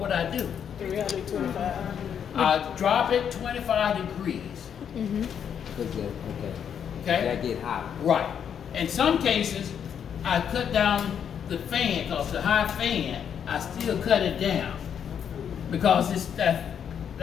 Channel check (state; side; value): quieter; right; 8.2 dB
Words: would I do? 325. I drop it 25 degrees. Okay. Okay? That get hot. Right. In some cases, I cut down the fan because the high fan, I still cut it down because it's that